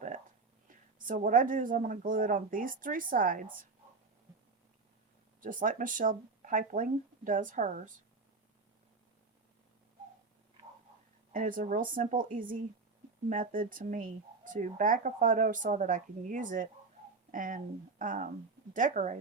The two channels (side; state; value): left; quieter; 4.1 dB